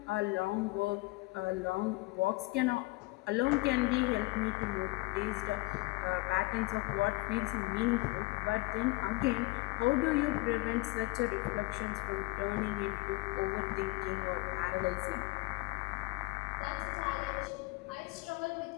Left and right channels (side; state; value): right; quieter; 23.8 dB